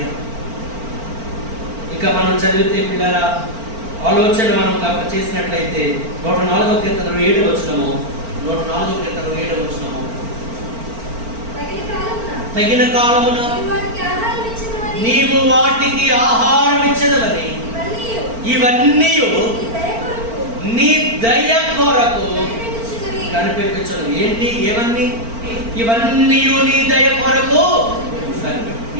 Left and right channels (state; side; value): late; left; 4.4 ms